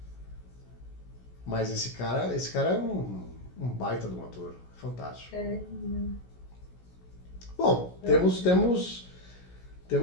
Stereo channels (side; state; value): right; late; 16 ms